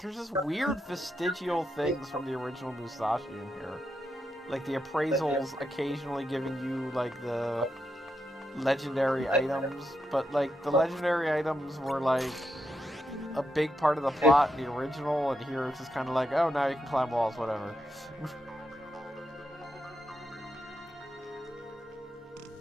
this weird vestigial things from the original Musashi in here. Like the appraisals occasionally giving you like the legendary items, but like the legendary items were like a big part of the plot in the original, and here it's just kind of like, oh, now you can climb walls, whatever.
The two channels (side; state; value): both; normal; correlation 0.84